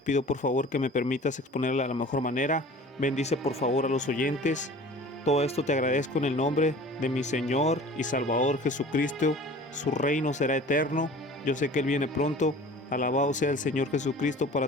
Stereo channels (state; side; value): normal; both; correlation 0.44